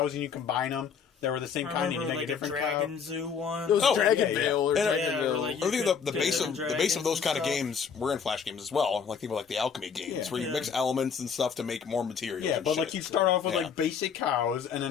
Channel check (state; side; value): quieter; right; 6.5 dB